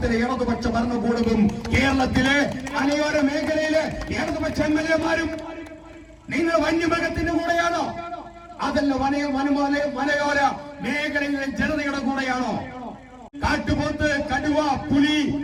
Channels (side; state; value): both; identical; correlation 1.00